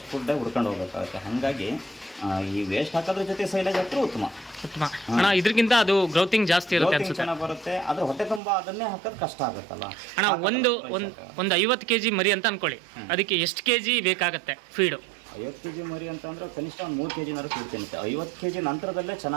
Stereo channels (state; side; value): drops out; left; at 8.4 s